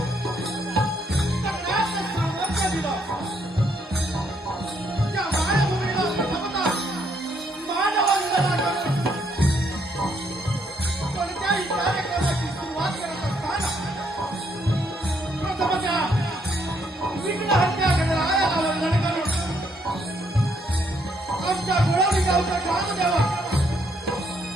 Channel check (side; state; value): both; normal; correlation 0.72